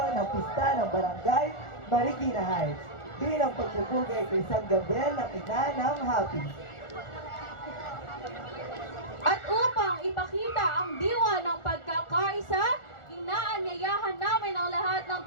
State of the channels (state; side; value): late; right; 1.4 ms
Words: ng pista ng Barangay Marikina Heights bilang pagpupugay kay San Gabriel ng ina ng Happy. At upang ipakita ang diwa ng pagkakaisa, inaanyayahan namin ang lahat ng